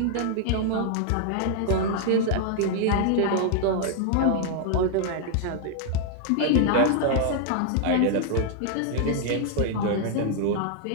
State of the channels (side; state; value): both; different; correlation 0.00